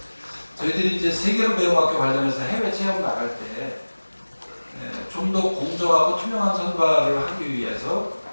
저희들이 이제 세계로 배움 학교 관련해서 해외 체험 나갈 때 좀 더 공정하고 투명한 선발을 하기 위해서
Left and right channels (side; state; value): both; inverted; correlation -1.00